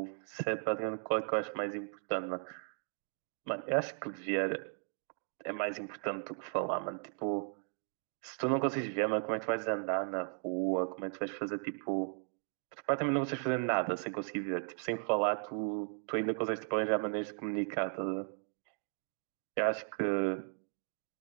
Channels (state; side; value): silent; left; 53 dB below the other